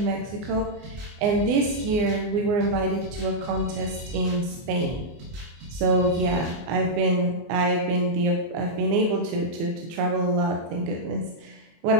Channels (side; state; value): left; late; 24 ms